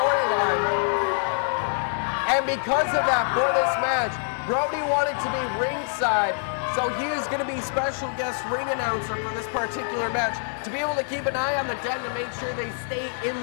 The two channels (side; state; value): right; silent; digital silence